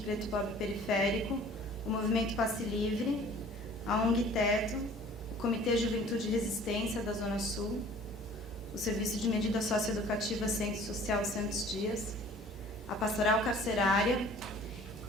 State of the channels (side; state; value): both; normal; correlation 0.50